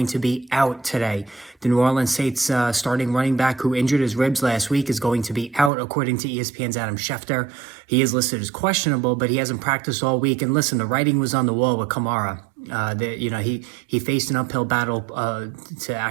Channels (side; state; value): left; drops out; at 5.7 s